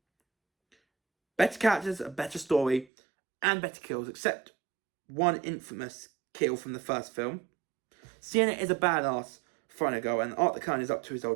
Better characters, a better story, and better kills, except one infamous kill from the first film. Sienna is a badass throwing a go, and Art the Clown is up to his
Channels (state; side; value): drops out; left; at 2.9 s